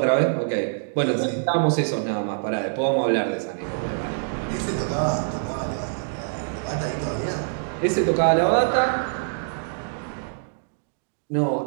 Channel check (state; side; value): silent; left; digital silence